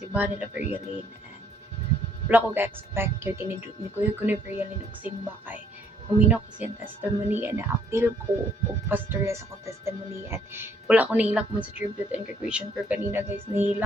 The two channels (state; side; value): normal; both; correlation 0.66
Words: nila Veryaline, and wala ko ga-expect yun kinidot ni Kuya ko ni Veryaline og simba kay huminaw kasi ang testimony and na-appeal ko og pastorya sa akong testimony, and wala ko nahilak mo sa tribute and graduation pero kanina guys